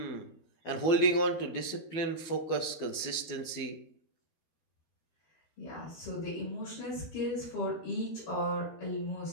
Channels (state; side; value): late; right; 12 ms